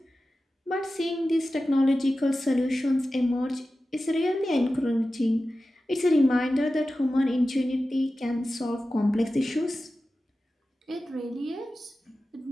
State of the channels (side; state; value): both; normal; correlation 0.94